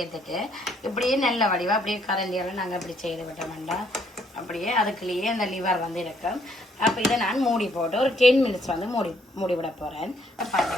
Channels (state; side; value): normal; both; correlation 0.69